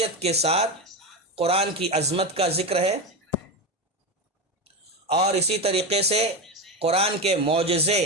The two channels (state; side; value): normal; both; correlation 0.15